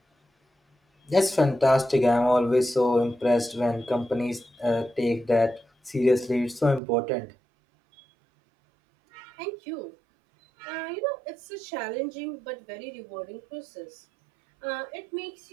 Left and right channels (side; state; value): left; drops out; at 6.8 s